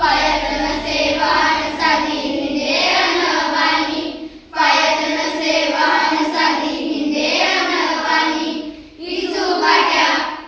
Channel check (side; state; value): both; identical; correlation 1.00